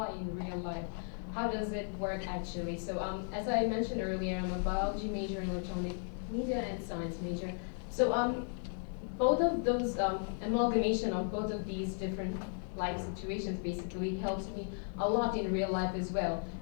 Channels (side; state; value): right; silent; 54 dB below the other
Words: in real life, how does it work actually? So as I mentioned earlier, I'm a biology major and electronic media and science major. So both of those, amalgamation of both of these different life situations basically helps me a lot in real life as well.